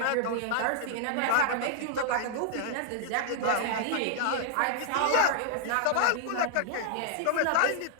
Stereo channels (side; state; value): both; different; correlation -0.01